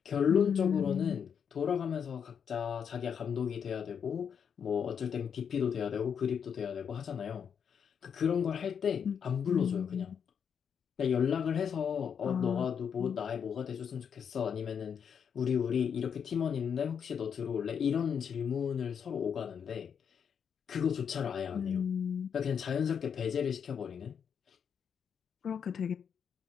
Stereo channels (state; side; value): quieter; right; 7.4 dB